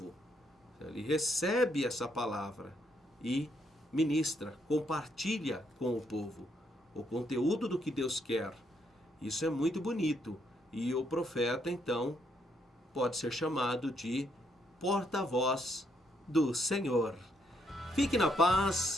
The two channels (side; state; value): both; normal; correlation 0.74